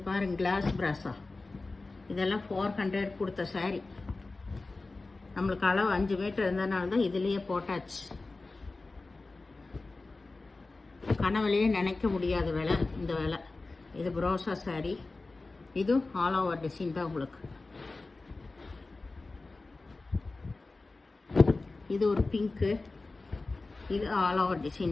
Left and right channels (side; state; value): right; quieter; 3.5 dB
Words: பாருங்க, கிளாஸ் பிராஸா. இதெல்லாம் 400 கொடுத்த சாரீ. நம்மளுக்கு அளவு 5 மீட்டர் இருந்ததுனால தான் இதுலேயே போட்டாச்சு. கனவுலையே நினைக்க முடியாத விலை இந்த விலை. இது ப்ரோசா சாரீ. இதுவும் ஆல் ஓவர் டிசைன் தான் உங்களுக்கு. இது ஒரு பிங்க்கு, இது ஆல் ஓவர்